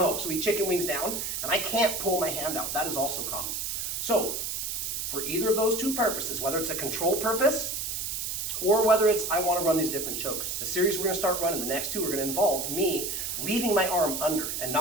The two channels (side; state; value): right; noise; hiss, 3 dB below the sound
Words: so he chicken wings down, and I can't pull my hand out. That is also common. So for either of those two purposes, whether it's a control purpose or whether it's I want to run these different chokes, the series we're going to start running, the next two are going to involve me leaving my arm under and